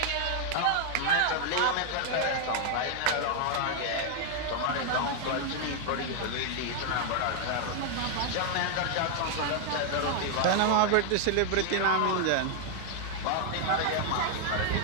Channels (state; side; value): different; both; correlation 0.00